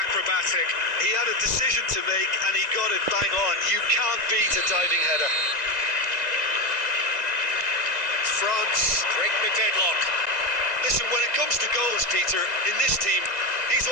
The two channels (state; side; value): late; left; 1.9 ms